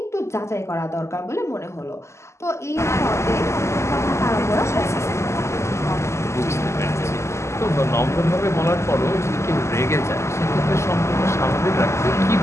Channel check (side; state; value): right; late; 0.13 ms